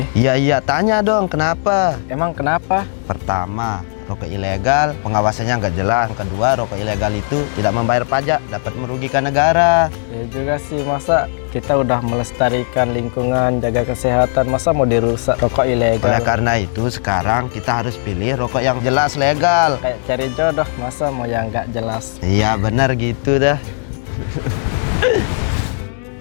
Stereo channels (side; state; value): right; silent; digital silence